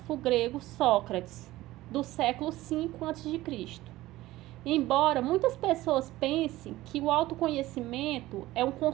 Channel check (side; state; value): left; quieter; 17.0 dB